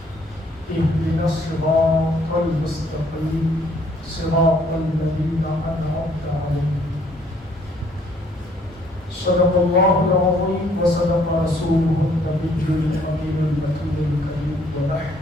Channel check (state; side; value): normal; both; correlation 0.64